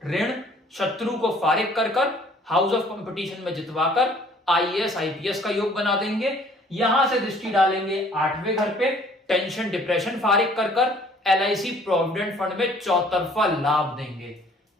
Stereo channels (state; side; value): normal; both; correlation 0.56